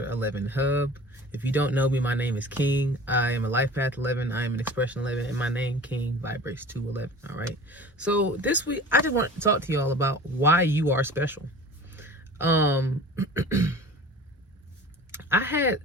11 Hub. If you don't know me, my name is King. I am a Life Path 11. I am an Expression 11, and my name, King, vibrates to 11. All right. So this week, I just want to talk to y'all about why you are special. Um, I had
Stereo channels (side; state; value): both; normal; correlation 0.41